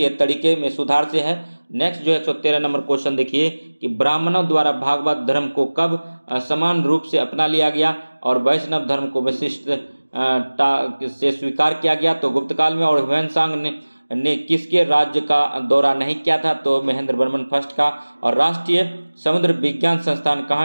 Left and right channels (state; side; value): inverted; both; correlation -1.00